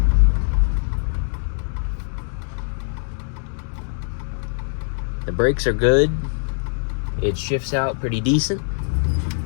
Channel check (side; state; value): right; silent; digital silence